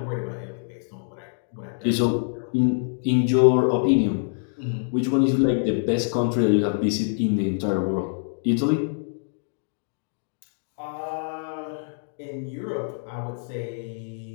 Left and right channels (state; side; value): silent; right; digital silence